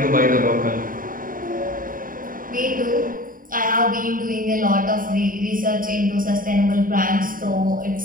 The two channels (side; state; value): left; late; 0.40 ms